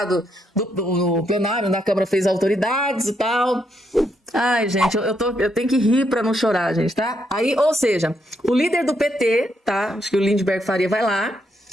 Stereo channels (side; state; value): both; normal; correlation 0.77